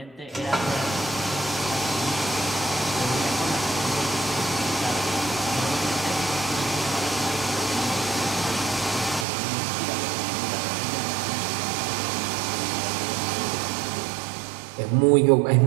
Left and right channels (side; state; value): left; drops out; at 9.2 s